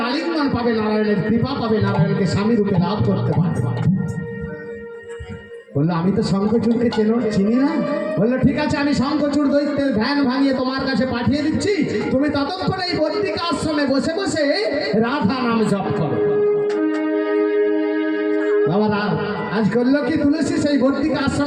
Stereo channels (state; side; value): identical; both; correlation 1.00